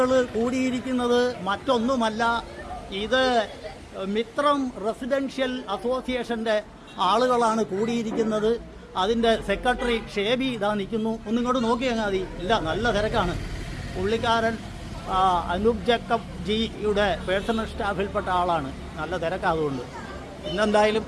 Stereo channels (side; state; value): both; identical; correlation 1.00